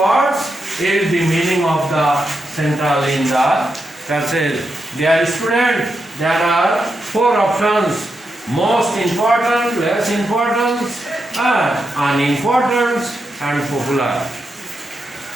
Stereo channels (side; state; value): both; normal; correlation 0.85